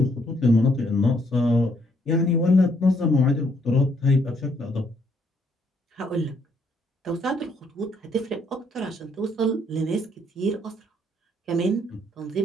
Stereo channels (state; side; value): normal; both; correlation 0.70